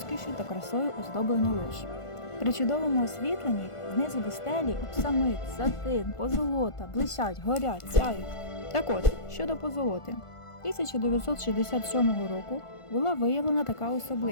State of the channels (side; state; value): right; late; 1.5 ms